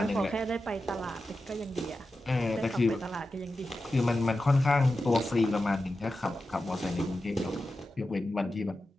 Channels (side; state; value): both; normal; correlation 0.92